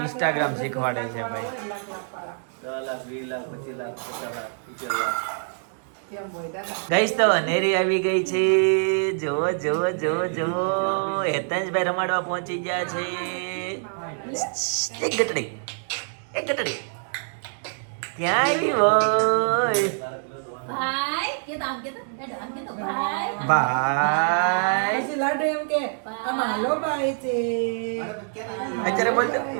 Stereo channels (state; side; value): silent; left; digital silence